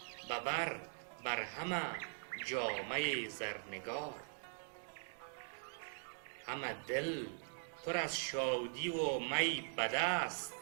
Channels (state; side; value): silent; left; digital silence